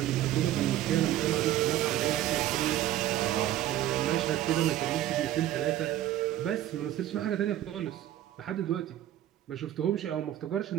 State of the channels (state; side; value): quieter; left; 12.8 dB